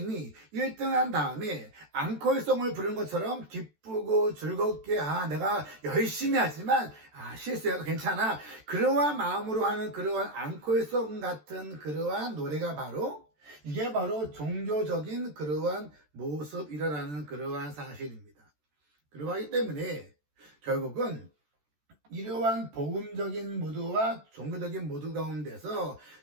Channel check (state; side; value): late; left; 14 ms